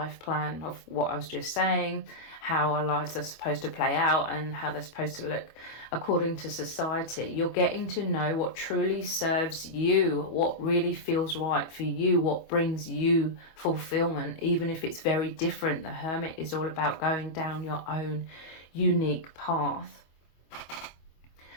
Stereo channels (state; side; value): late; right; 25 ms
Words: plan of what I was just saying, how our lives are supposed to play out and how they're supposed to look according to society. You're getting to know what truly serves you, what really feels right for you, what brings you fulfillment, even if it's very different. The Hermit is all about going down your own unique path.